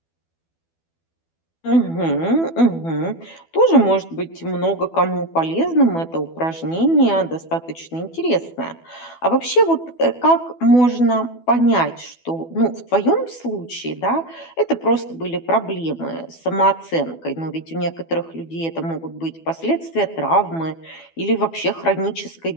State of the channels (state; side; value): late; right; 12 ms